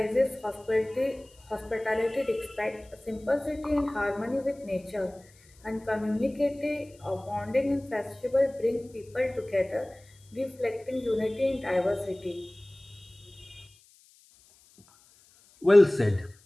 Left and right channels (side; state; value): left; noise; hiss, 28 dB below the sound